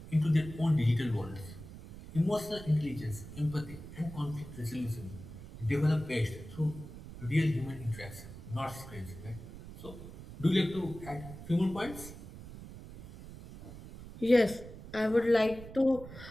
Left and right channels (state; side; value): noise; right; rumble, 14 dB below the sound